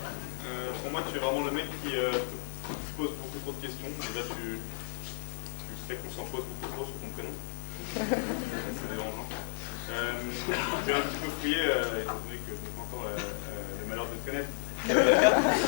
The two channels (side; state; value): right; silent; digital silence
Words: pour moi tu es vraiment le mec qui se pose beaucoup trop de questions. Déjà tu sais qu'on s'en pose beaucoup trop sur ton prénom. C'est dérangeant. J'ai un petit peu fouillé, étant donné que je n'ai pas encore le malheur de te connaître. Ton